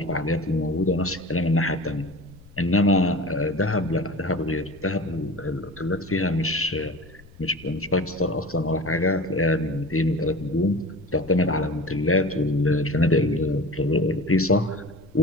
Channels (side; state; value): left; noise; rumble, 23 dB below the sound